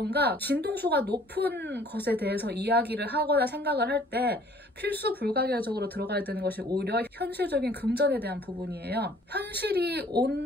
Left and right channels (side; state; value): both; normal; correlation 0.56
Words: 진동수가 높은 것에 대해서 이야기를 하거나 생각을 할 때 필수 불가결적으로 들어가야 되는 것이 오히려 현실적인 금전에 대한 부분이에요. 현실이